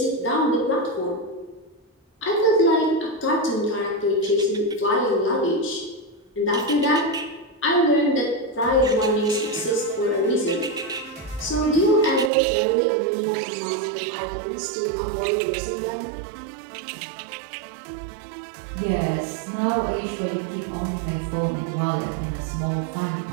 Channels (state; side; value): drops out; left; at 12.3 s